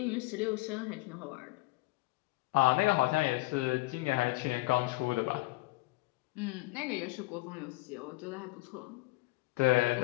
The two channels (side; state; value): right; quieter; 21.3 dB